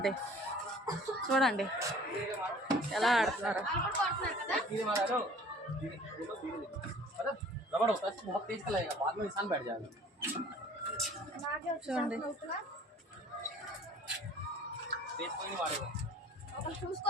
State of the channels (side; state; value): both; normal; correlation 0.50